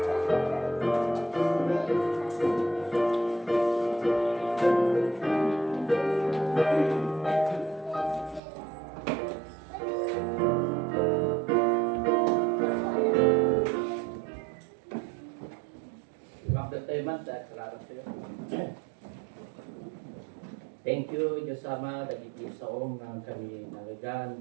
Thank you, Diyos Ama, dagiti sa ng kami nagagan.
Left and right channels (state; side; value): drops out; left; at 8.4 s